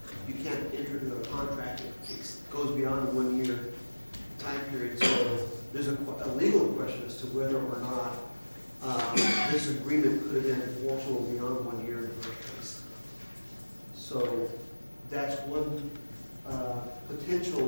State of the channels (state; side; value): inverted; both; correlation -1.00